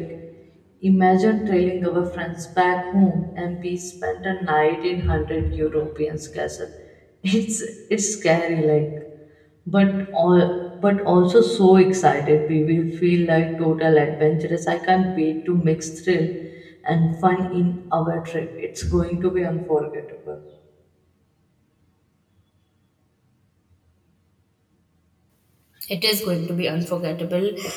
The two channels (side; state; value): both; identical; correlation 1.00